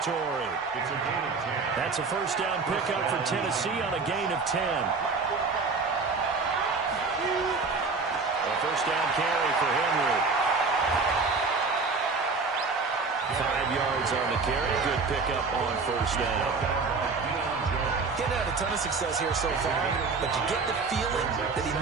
It's a gain of 10. That's a first down pickup for Tennessee on a gain of 10. A first down carry for Henry. 5 yards on the carry. Good pickup on first down. Getting had a ton of success here so far, but you get the feeling that he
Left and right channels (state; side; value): quieter; left; 4.4 dB